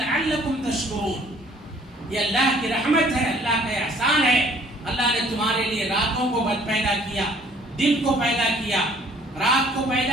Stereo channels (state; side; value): normal; both; correlation 0.58